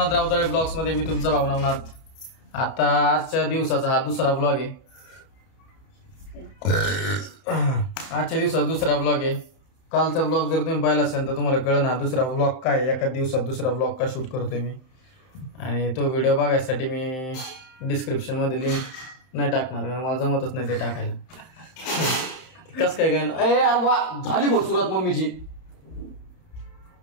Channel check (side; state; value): right; late; 31 ms